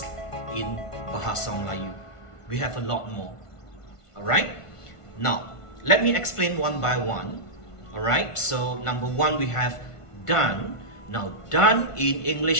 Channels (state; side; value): late; right; 1.5 ms